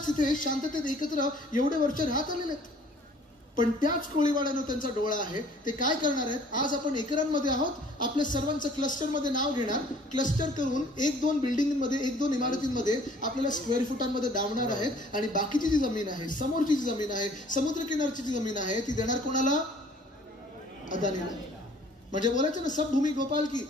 तिथे शांततेत एकत्र एवढे वर्ष राहत आलेले आहेत. पण त्याच कोळीवाड्यानं त्यांचा डोळा आहे. ते काय करणार आहेत? आज आपण एकरांमध्ये आहोत, आपल्या सर्वांचं क्लस्टरमध्ये नाव घेणार, क्लस्टर करून 1-2 बिल्डिंगमध्ये, 1-2 इमारतींमध्ये आपल्याला स्क्वेअर फुटांमध्ये डावणार आहेत. आणि बाकीची जी जमीन आहे, समोरची जी जमीन आहे, समुद्रकिनारची जी जमीन आहे, ती देणार कोणाला? अदानीला. म्हणजे बोलायचं ना सब भूमी गोपाल की,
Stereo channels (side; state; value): both; normal; correlation 0.54